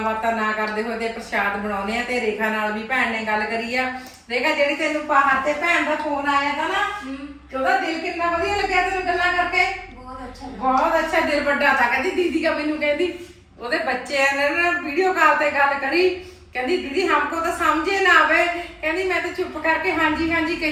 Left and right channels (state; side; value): identical; both; correlation 1.00